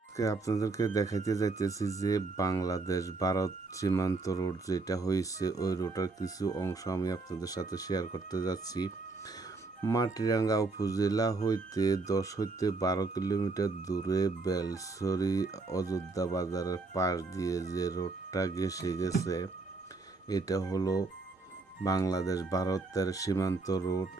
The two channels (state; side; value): quieter; left; 3.6 dB